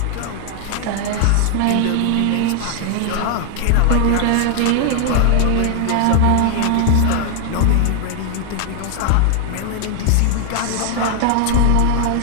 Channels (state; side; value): different; both; correlation 0.00